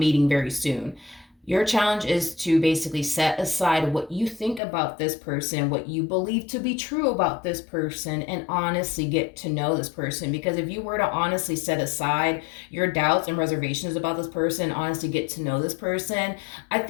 very soon. Your challenge is to basically set aside what you think about this person, what you believe to be true about this person, and honestly get to know this person. Because if you were to honestly set aside your doubts and reservations about this person, honestly get to know this person, I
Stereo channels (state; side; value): drops out; right; at 4.6 s